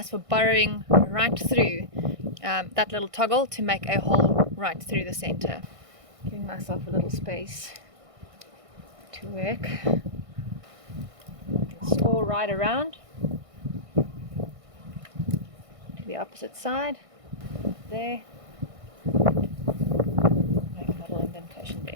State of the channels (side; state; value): left; late; 1.6 ms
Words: for burrowing right through that little toggle to make a hole right through the center. Giving myself a little space to work. Score right around to the opposite side there. Make a little indentation